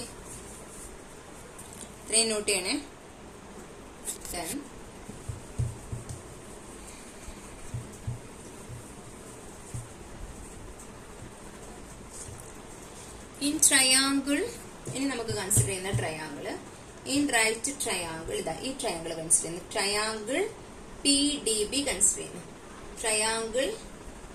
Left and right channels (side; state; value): both; identical; correlation 1.00